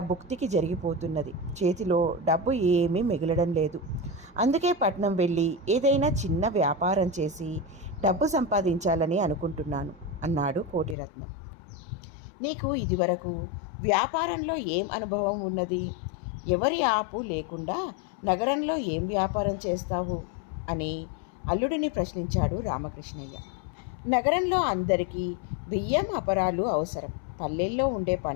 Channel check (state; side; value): drops out; right; at 11.0 s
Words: భుక్తికి జరిగిపోతున్నది. చేతిలో డబ్బు ఏమీ మిగలడం లేదు. అందుకే పట్నం వెళ్ళి ఏదైనా చిన్న వ్యాపారం చేసి డబ్బు సంపాదించాలని అనుకుంటున్నాను అన్నాడు కోటిరత్నం. నీకు ఇదివరకు వ్యాపారంలో ఏం అనుభవం ఉన్నది? ఎవరి ఆపు లేకుండా నగరంలో ఏం వ్యాపారం చేస్తావు అని అల్లుడిని ప్రశ్నించాడు రామకృష్ణయ్య. నగరంలో అందరికీ బియ్యం అపరాలు అవసరం. పల్లెల్లో ఉండే